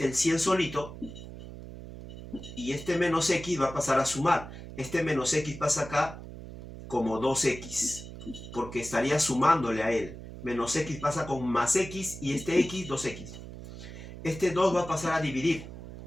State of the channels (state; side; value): noise; right; hum, 12 dB below the sound